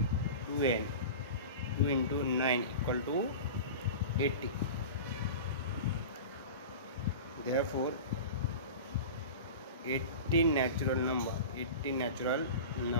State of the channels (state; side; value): inverted; both; correlation -0.32